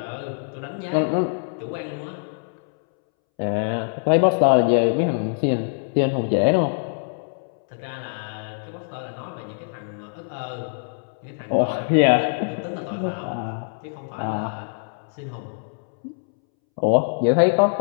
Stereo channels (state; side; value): silent; right; 63 dB below the other